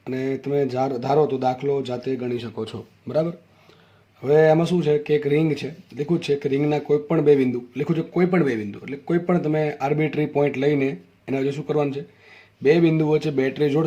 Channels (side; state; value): both; identical; correlation 1.00